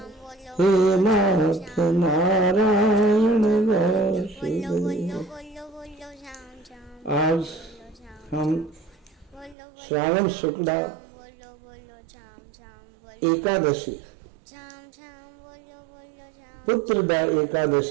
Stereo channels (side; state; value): left; drops out; at 9.6 s